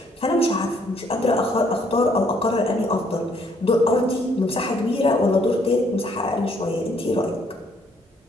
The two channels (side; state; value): both; normal; correlation 0.66